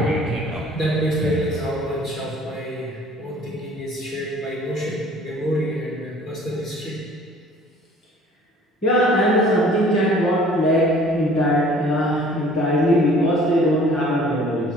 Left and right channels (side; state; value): both; normal; correlation 0.52